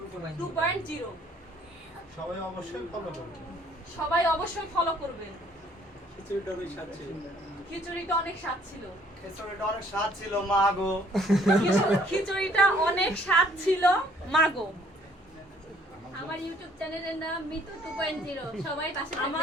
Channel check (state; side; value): normal; both; correlation 0.61